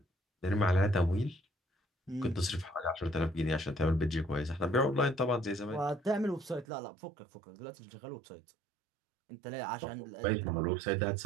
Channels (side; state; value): left; drops out; at 6.7 s